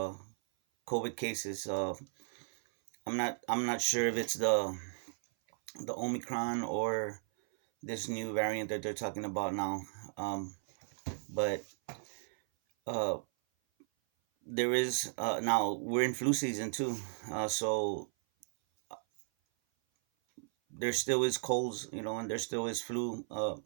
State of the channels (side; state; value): left; silent; 54 dB below the other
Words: COVID cases. I'm not sure if it's the Omicron or this new variant that they're talking about now. But uh, there is now we're in flu season too, so there still is colds, and there still is flu.